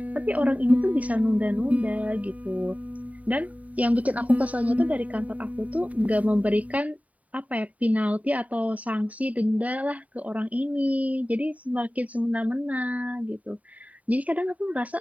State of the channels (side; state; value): left; late; 0.070 ms